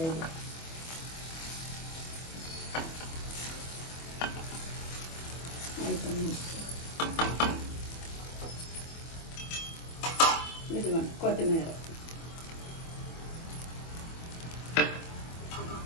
అయిపోయింది. ఇదిగోండి కొత్తిమీర.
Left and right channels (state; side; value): late; right; 25 ms